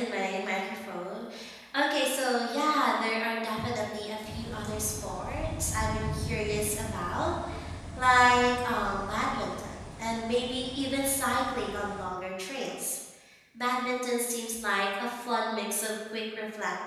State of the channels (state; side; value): identical; both; correlation 1.00